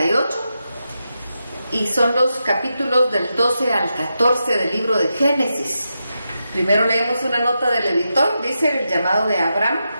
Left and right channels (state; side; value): inverted; both; correlation -0.87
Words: y son los capítulos del 12 al 14 del libro de Génesis. Primero leemos una nota del editor, dice: el llamado de Abraham.